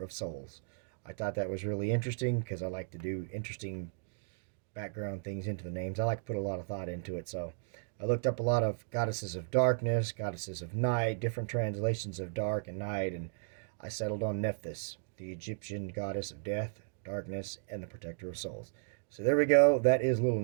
of souls. I thought that was really interesting because I like to do interesting background things into the names. I like to put a lot of thought into it. So I looked up a lot of goddesses of darkness, goddesses of night, different translations of dark and night, and I settled on Nephthys, the Egyptian goddess of death, darkness, and the protector of souls. So there we go. That is little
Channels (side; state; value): left; silent; digital silence